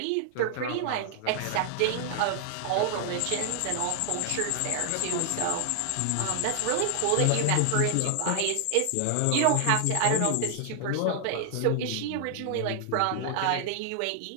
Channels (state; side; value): different; both; correlation 0.00